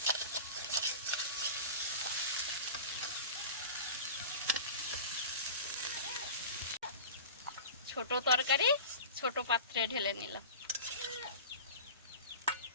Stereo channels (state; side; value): inverted; both; correlation -0.33